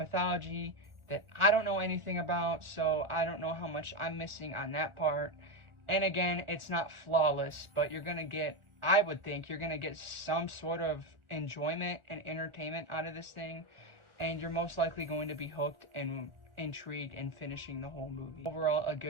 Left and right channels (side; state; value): left; late; 1.4 ms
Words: that I don't know anything about, so I don't know how much I'm missing on that part. And again, it's not flawless, but you're gonna get, I would think, you're gonna get some sort of enjoyment and entertainment out of this thing. And you're most likely going to be hooked and intrigued in finishing the whole movie. Overall, a